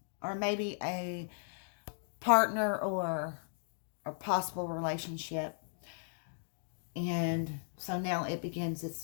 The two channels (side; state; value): right; silent; digital silence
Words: or maybe a partner, or a possible relationship. And so now it begins